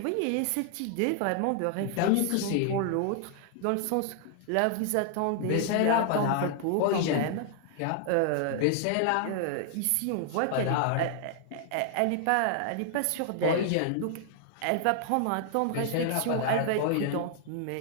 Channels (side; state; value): both; different; correlation 0.00